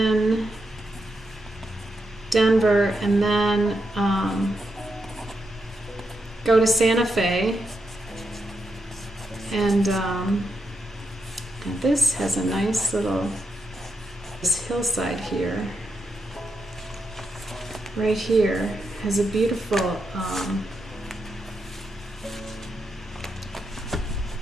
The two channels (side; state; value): both; normal; correlation 0.84